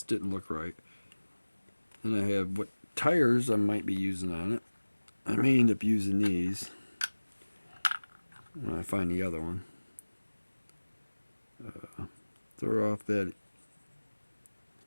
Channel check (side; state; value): both; inverted; correlation -1.00